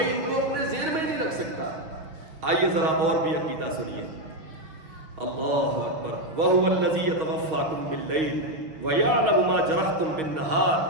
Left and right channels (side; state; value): left; late; 6.6 ms